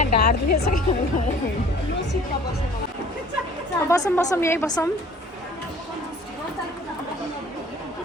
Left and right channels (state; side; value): normal; both; correlation 0.51